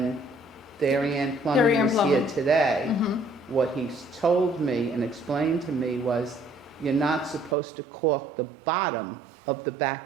Darien Plumbing Darien was here Plumbing. today, what he's told me and explained to me was you're not supposed to cork the bottom of the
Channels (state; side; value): drops out; left; at 7.6 s